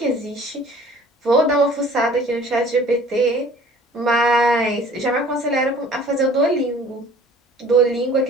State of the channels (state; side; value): normal; both; correlation 0.50